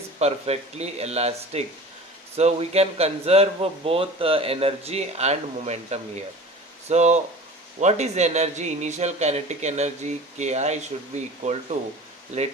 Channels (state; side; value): normal; both; correlation 0.38